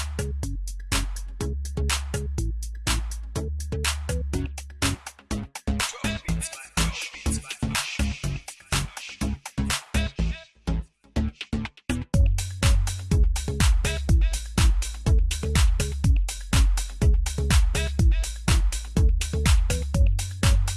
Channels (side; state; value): both; identical; correlation 1.00